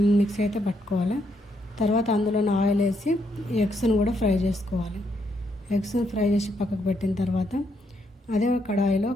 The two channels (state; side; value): normal; both; correlation 0.76